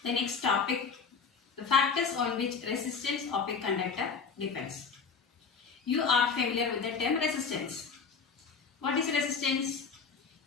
the next topic, the factors on which resistance of a conductor depends. You are familiar with the term resistance. What is resistance?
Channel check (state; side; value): quieter; right; 5.5 dB